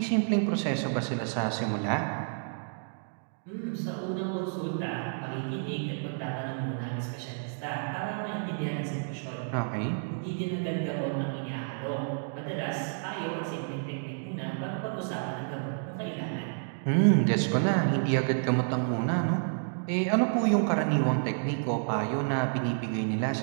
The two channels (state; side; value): silent; left; digital silence